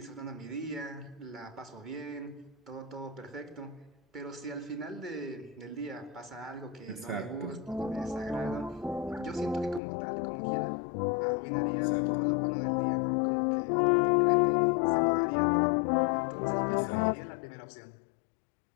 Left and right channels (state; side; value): drops out; right; at 9.8 s